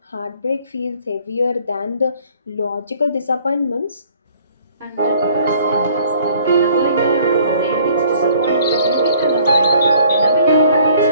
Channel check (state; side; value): inverted; both; correlation -0.58